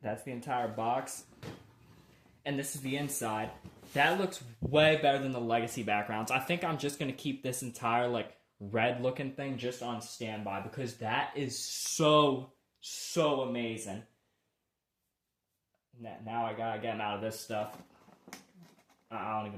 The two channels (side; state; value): both; identical; correlation 1.00